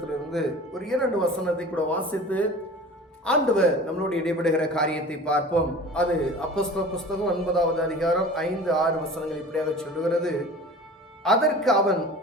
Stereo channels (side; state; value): both; normal; correlation 0.40